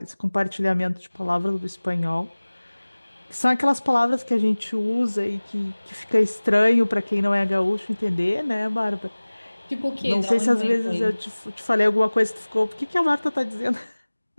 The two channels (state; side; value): inverted; both; correlation -1.00